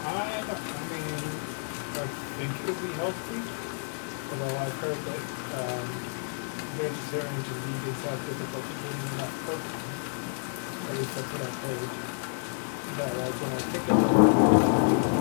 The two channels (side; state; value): right; silent; digital silence